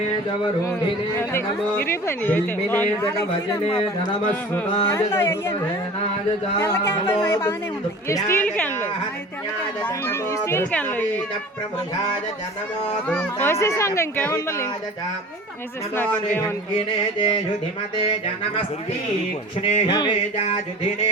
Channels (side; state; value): both; normal; correlation 0.40